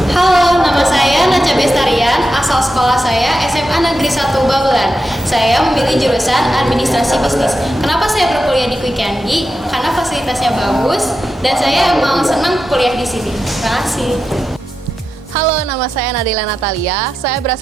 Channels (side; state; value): both; normal; correlation 0.89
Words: Halo, nama saya Naca Bestarian, asal sekolah saya SMA Negeri 1 Babelan. Saya memilih jurusan Administrasi Bisnis. Kenapa saya berkuliah di Quick Yangi? Karena fasilitasnya bagus dan saya emang senang kuliah di sini. Terima kasih. Halo, nama saya Nadila Natalia. Saya